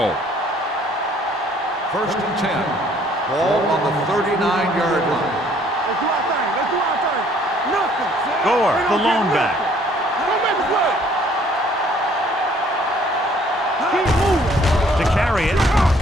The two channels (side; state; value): both; normal; correlation 0.60